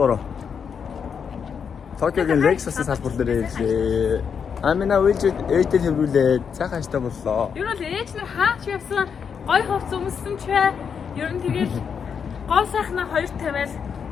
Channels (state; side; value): quieter; right; 6.8 dB